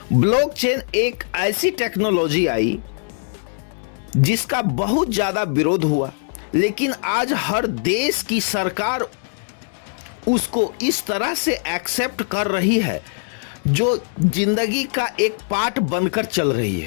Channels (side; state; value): right; silent; 62 dB below the other